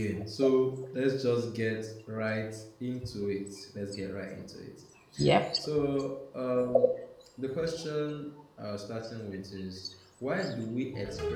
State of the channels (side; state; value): both; identical; correlation 1.00